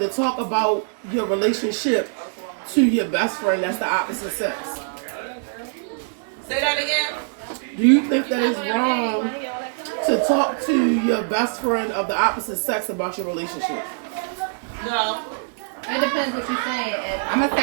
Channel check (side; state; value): left; silent; 61 dB below the other